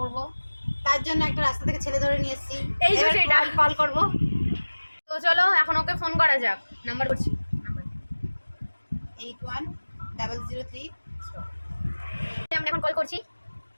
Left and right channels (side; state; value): both; inverted; correlation -1.00